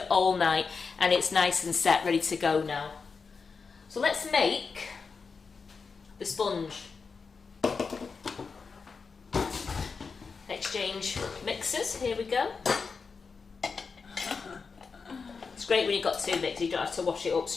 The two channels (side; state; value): right; quieter; 5.0 dB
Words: all night, and it's nice and set, ready to go now. So let's make the sponge. Exchange mixers. Here we go. It's great when you've got 2 mixers. You don't have to wash it up